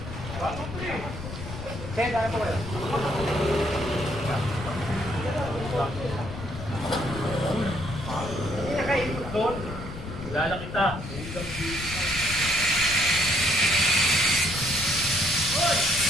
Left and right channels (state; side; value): noise; left; rumble, 9 dB below the sound